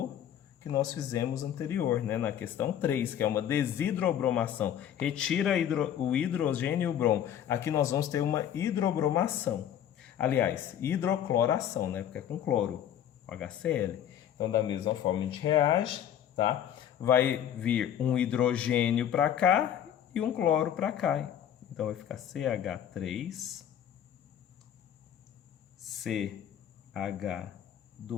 que nós fizemos anterior, né? Na questão 3, que é uma desidrobromação. Retira o hidrogênio e o bromo. Aqui nós vamos ter uma hidrobromação. Aliás, hidrocloração, né? Porque é com cloro, HCl. Então, da mesma forma, a gente reage, tá? Vai vir um hidrogênio para cá e um cloro para cá. Então, vai ficar CH3,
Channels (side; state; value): right; quieter; 10.0 dB